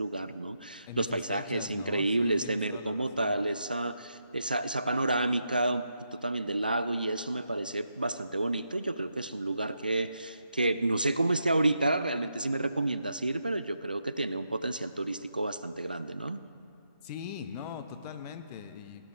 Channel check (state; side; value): inverted; both; correlation -0.82